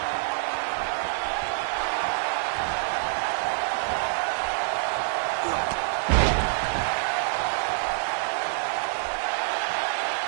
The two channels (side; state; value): left; silent; digital silence